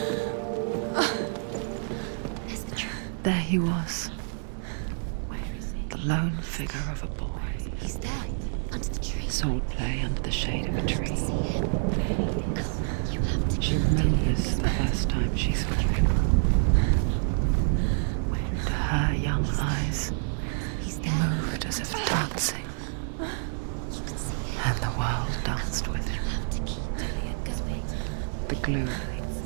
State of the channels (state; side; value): silent; left; digital silence